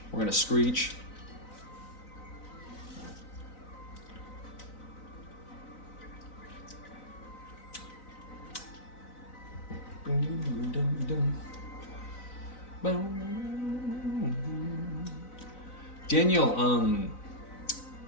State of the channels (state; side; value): late; right; 3.9 ms